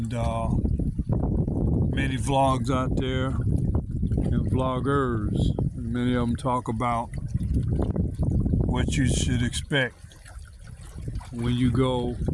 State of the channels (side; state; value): both; identical; correlation 1.00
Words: many vlogs out there and vloggers, and many of them talk about what you should expect when you go